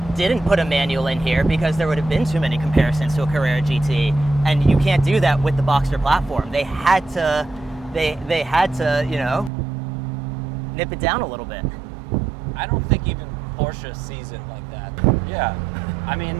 didn't put a manual in here because there would have been too many comparisons to a Carrera GT, and you can't do that with the Boxster platform. They had to, they had to, you know, nip it down a little bit. I don't think even Porsche sees it like that. Yeah, I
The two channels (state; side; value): drops out; left; at 9.5 s